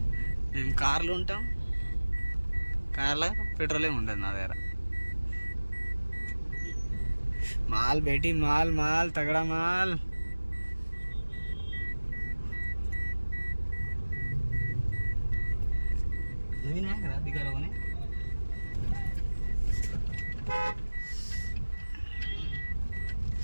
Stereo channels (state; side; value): inverted; both; correlation -1.00